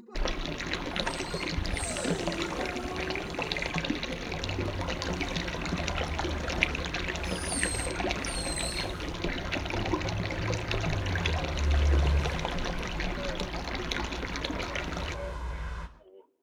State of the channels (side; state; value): both; identical; correlation 1.00